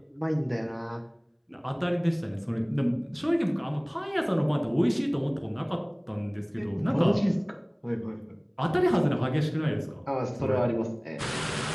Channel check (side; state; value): both; identical; correlation 1.00